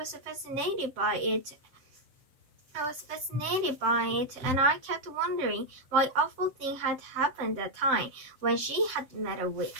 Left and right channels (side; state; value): left; late; 7.7 ms